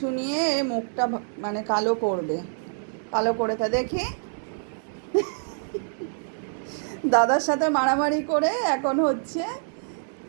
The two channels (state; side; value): silent; left; digital silence